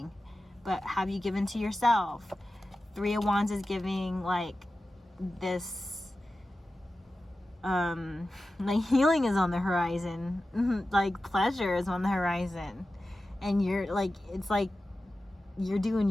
but have you given to yourself? Three of Wands is giving like this, like healing is on the horizon, like pleasure is on the horizon, and you're like, it's like you're doing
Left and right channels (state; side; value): normal; both; correlation 0.94